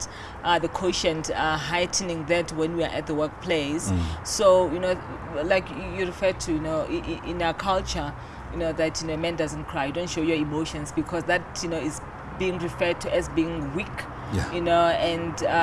the quotient heightening that when we are at the workplace. So like you referred to, in our culture, that man doesn't cry. You don't show your emotions because that is being referred to as being weak. Yeah.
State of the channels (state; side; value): identical; both; correlation 1.00